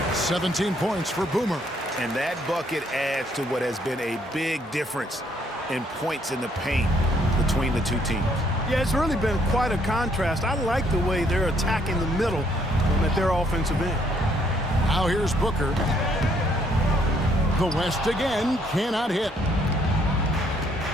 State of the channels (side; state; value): both; normal; correlation 0.68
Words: 17 points for Boomer. And that bucket adds to what has been a big difference in points in the paint between the two teams. Yeah, it's really been quite a contrast. I like the way they're attacking the middle at their offensive end. Now here's Booker. The West again cannot hit.